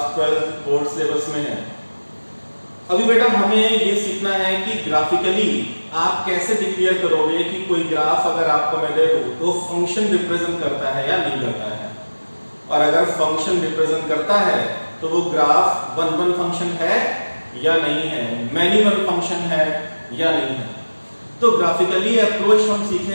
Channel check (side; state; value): both; inverted; correlation -1.00